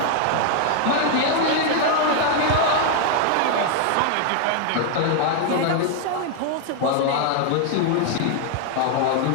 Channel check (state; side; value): different; both; correlation 0.00